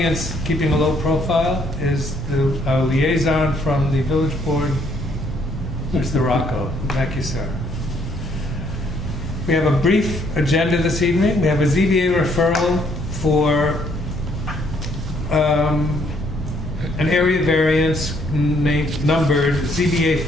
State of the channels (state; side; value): normal; both; correlation 0.68